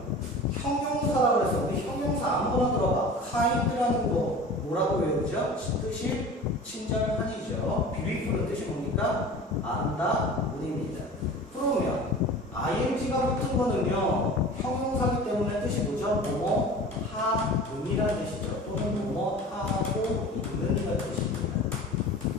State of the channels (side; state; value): both; normal; correlation 0.38